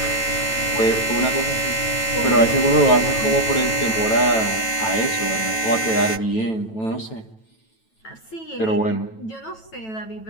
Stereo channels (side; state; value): right; late; 9.1 ms